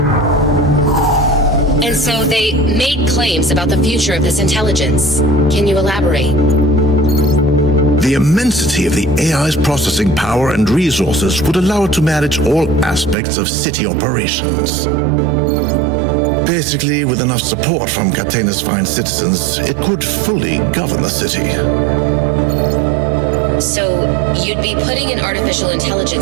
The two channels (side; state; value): left; drops out; at 13.2 s